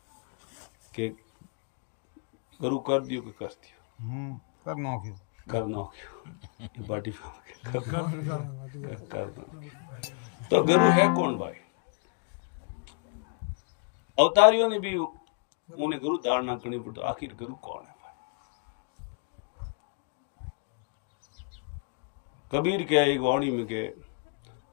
कि गुरु कर दियो कि कर दियो, करना क्यों ये बाटी कर दो। तो गुरु है कौन भाई? अवतारियों ने भी उन्हें गुरु धारणा करनी पड़ी। तो आखिर गुरु कौन है भाई? कबीर के एक वाणी में के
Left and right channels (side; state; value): right; quieter; 37.4 dB